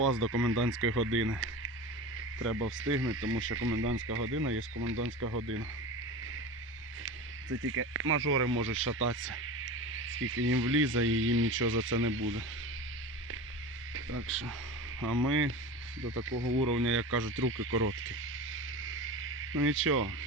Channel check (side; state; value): both; normal; correlation 0.30